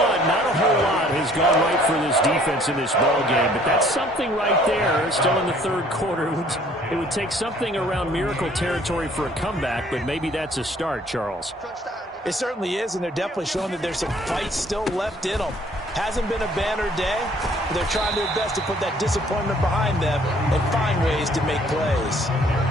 not a whole lot has gone right for this defense in this ball game, but that's something right there. Still in the 3rd quarter. It would take something around miracle territory for a comeback, but maybe that's a start, Charles. It certainly is, and they're definitely showing that there's some fight still left in them. Hasn't been a banner day, but they're trying their best to put that disappointment behind them and find ways to make plays.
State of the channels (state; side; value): normal; both; correlation 0.58